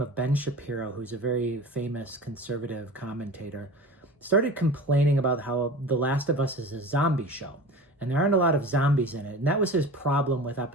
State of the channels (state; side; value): normal; both; correlation 0.35